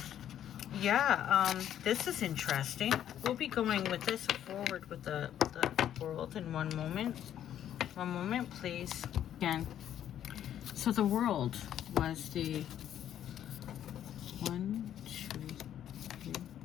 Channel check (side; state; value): right; quieter; 10.6 dB